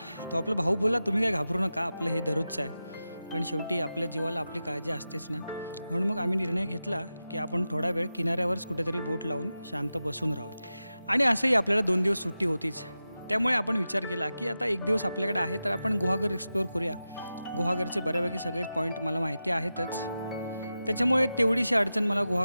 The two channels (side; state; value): both; inverted; correlation -0.92